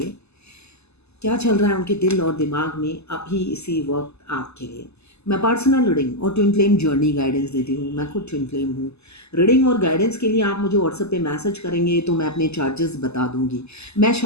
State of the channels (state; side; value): late; right; 0.80 ms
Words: क्या चल रहा है उनके दिल और दिमाग में अभी इसी वक्त आपके लिए। मैं पर्सनल रीडिंग और ट्विन फ्लेम जर्नी गाइडेंस देती हूँ। मैं खुद ट्विन फ्लेम हूँ। रीडिंग और गाइडेंस के लिए आप मुझे व्हाट्सएप पे मैसेज करेंगे तो मैं अपने चार्जेस बता दूंगी। मैं